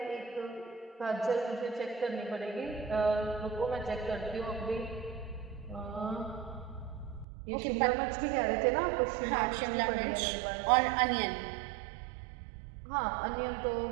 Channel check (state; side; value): drops out; left; at 7.2 s